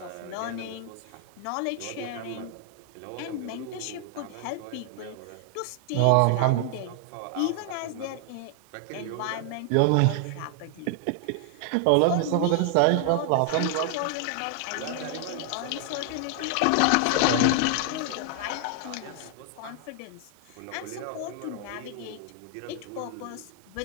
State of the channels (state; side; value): different; both; correlation 0.00